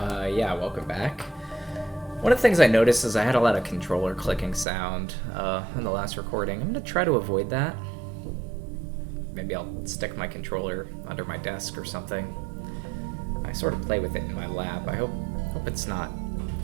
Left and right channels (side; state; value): left; drops out; at 4.7 s